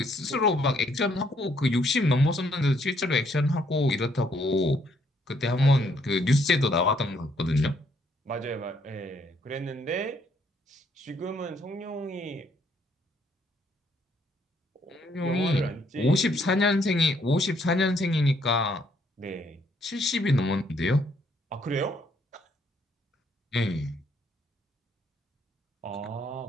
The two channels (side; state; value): both; normal; correlation 0.69